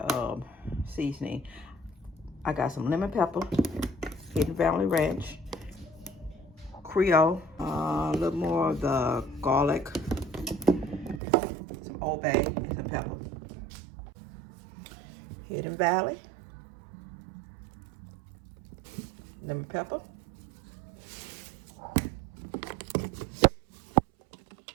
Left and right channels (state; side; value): drops out; left; at 11.2 s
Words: seasoning. I got some lemon pepper, Hidden Valley Ranch, Creole, a little more of the garlic, some Old Bay, and some pepper. Hidden Valley, lemon pepper,